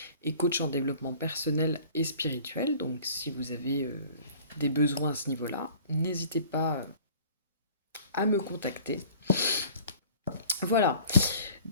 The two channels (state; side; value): inverted; both; correlation -0.49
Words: et coach en développement personnel et spirituel. Donc si vous avez des besoins à ce niveau-là, n'hésitez pas à me contacter. Voilà.